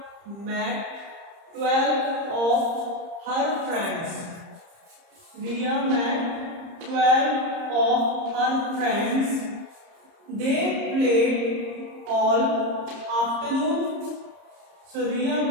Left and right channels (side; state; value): left; late; 30 ms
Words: met 12 of her friends. Riya met 12 of her friends. They played all afternoon. So Riya